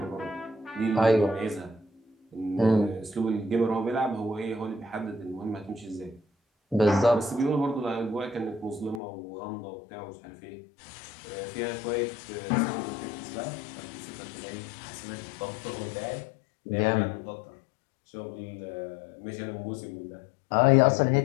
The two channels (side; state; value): right; drops out; at 9.0 s